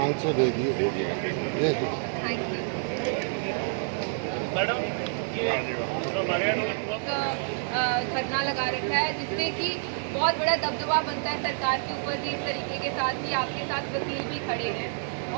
दे दिए। मैडम धरना लगा रखा है जिससे कि बहुत बड़ा दबदबा बनता है सरकार के ऊपर भी। इस तरीके के साथ ही आपके साथ वकील भी खड़े हैं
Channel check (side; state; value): left; silent; 59 dB below the other